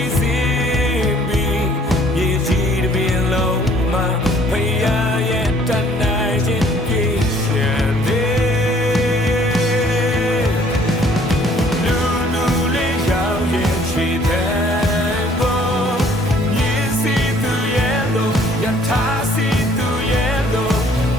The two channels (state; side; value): normal; both; correlation 0.58